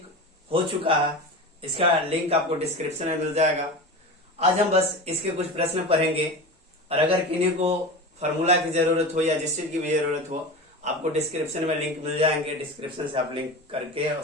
हो चुका है। इसका लिंक आपको डिस्क्रिप्शन में मिल जाएगा। आज हम बस इसके कुछ प्रश्न पढ़ेंगे, और अगर किन्हीं को फॉर्मूला की जरूरत हो या जिस चीज की भी जरूरत हो, आपको डिस्क्रिप्शन में लिंक मिल जाएंगे। डिस्क्रिप्शन से आप लिंक करके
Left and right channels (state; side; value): normal; both; correlation 0.28